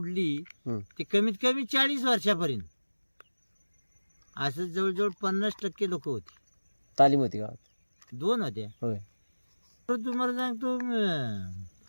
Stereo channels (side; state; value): both; inverted; correlation -1.00